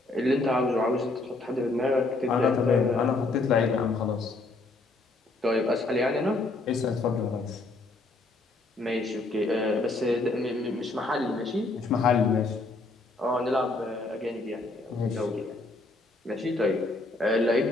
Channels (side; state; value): right; quieter; 3.2 dB